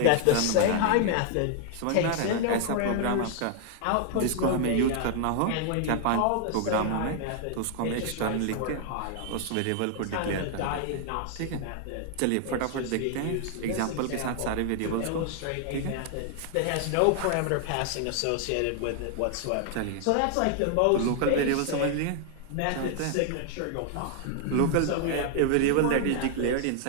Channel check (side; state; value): both; different; correlation 0.00